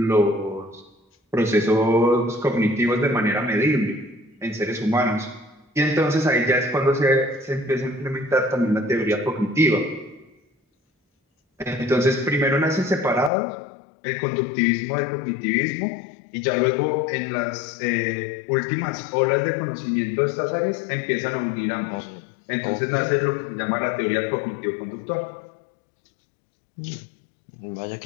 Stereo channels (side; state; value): right; drops out; at 13.3 s